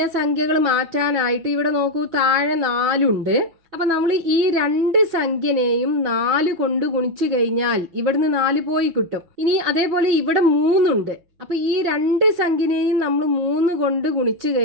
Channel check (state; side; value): late; left; 5.5 ms